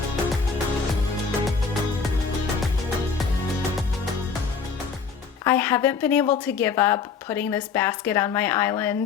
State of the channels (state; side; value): quieter; right; 5.5 dB